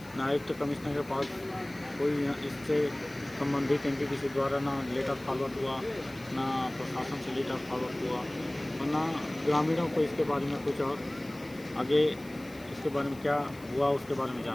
ना आयुक्त तो कमिश्नर के पास कोई इससे संबंधित एनटीपीसी द्वारा ना लेटर फॉरवर्ड हुआ, ना प्रशासन से लेटर फॉरवर्ड हुआ, और ना ग्रामीणों को इसके बारे में कुछ और आगे इसके बारे में क्या हुआ उसके बारे में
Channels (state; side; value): noise; left; hiss, 23 dB below the sound